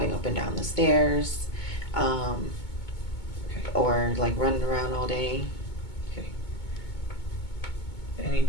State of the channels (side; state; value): right; late; 2.2 ms